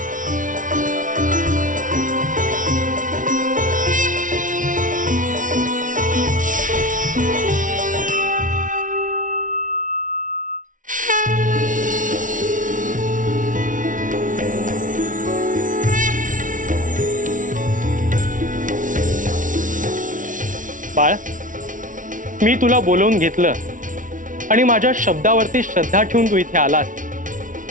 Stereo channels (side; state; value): left; late; 0.38 ms